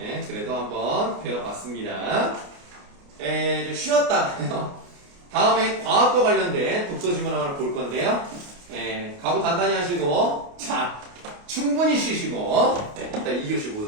그래도 한번 배워봤습니다. 좀 쉬었다. 다음에 과학과 관련된 독서 질문 하나 볼 건데요. 각오 단단히 하시고, 자, 충분히 쉬시고, 이따 2교시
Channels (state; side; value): late; left; 29 ms